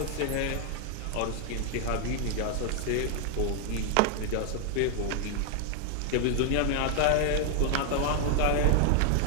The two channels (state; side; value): different; both; correlation 0.00